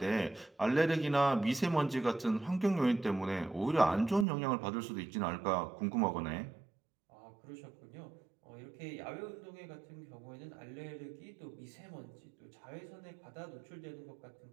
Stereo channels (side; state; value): left; drops out; at 4.2 s